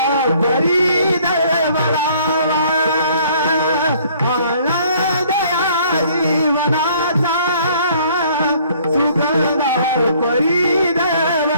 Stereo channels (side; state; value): both; inverted; correlation -0.59